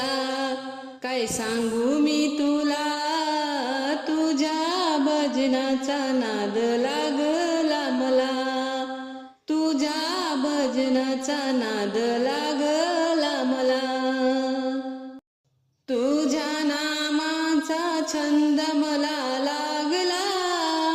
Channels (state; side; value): identical; both; correlation 1.00